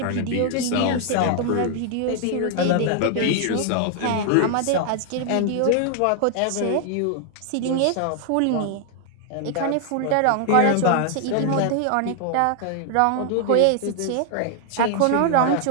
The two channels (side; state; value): both; different; correlation 0.00